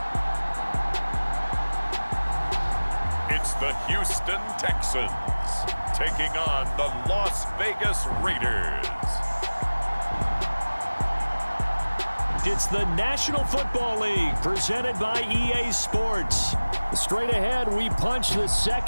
It's the Houston Texans taking on the Las Vegas Raiders. It's the National Football League presented by EA Sports. Straight ahead, we punch the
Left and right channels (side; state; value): both; inverted; correlation -1.00